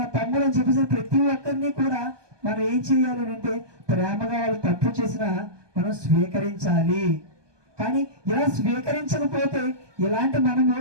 తమ్ముడు అని చెప్పేసి ప్రతి ఒక్కరిని కూడా మనం ఏం చేయాలి అంటే ప్రేమగా వాళ్ళు తప్పు చేసినా మనం స్వీకరించాలి. కానీ ఇలా స్వీకరించకపోతే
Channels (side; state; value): left; late; 1.2 ms